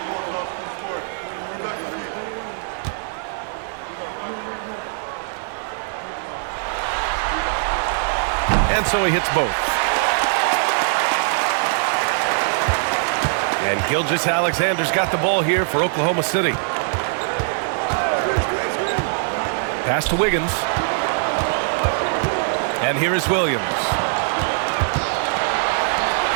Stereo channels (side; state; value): left; silent; digital silence